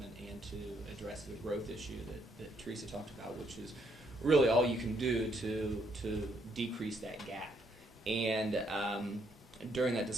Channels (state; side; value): normal; both; correlation 0.72